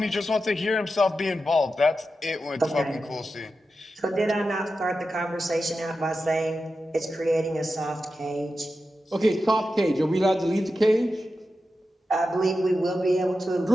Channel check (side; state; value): both; normal; correlation 0.91